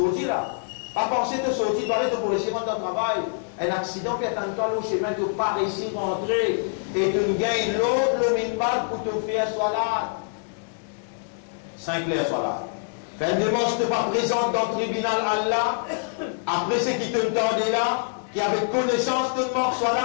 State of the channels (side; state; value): right; silent; digital silence